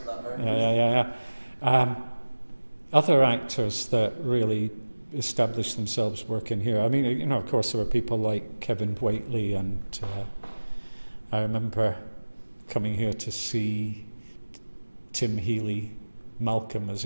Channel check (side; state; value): both; inverted; correlation -1.00